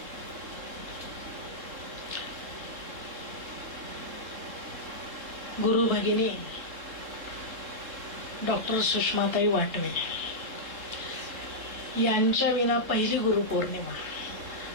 गुरु भगिनी डॉक्टर सुषमाताई वाटवे यांच्या विना पहिली गुरुपौर्णिमा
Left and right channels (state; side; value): late; left; 3.7 ms